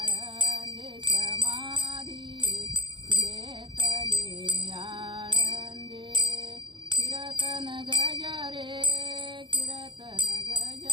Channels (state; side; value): late; left; 0.23 ms